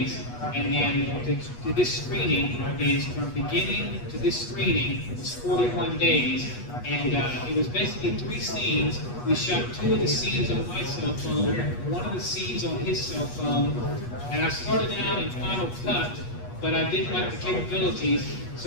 And then to this screening is from beginning to this screening was 41 days. And it was basically 3 scenes. We shot 2 of the scenes on my cell phone, 1 of the scenes on his cell phone. And I started out in Final Cut, but I didn't like the capabilities,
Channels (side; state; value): right; late; 8.3 ms